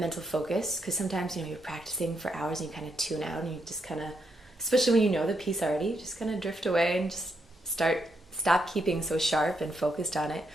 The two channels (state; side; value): normal; both; correlation 0.79